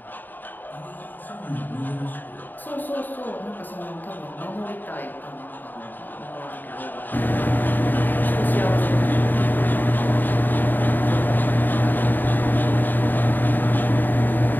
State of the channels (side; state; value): right; late; 0.090 ms